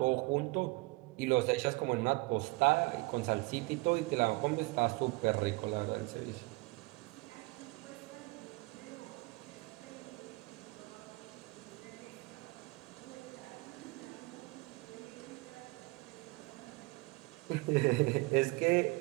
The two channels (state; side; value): quieter; left; 24.6 dB